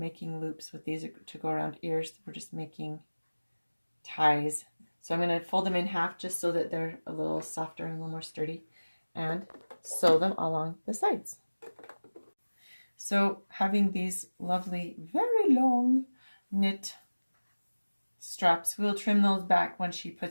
loops with these to go around ears, we're just making ties. So I'm going to fold them in half just so that they're a little softer and a little more sturdy, and sew them along the sides. So having these lovely, very long knit straps, we'll trim those back when she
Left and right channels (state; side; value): inverted; both; correlation -1.00